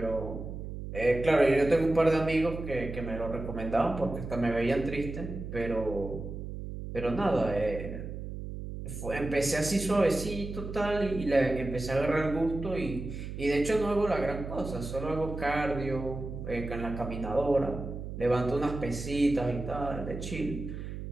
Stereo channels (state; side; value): noise; right; hum, 8 dB below the sound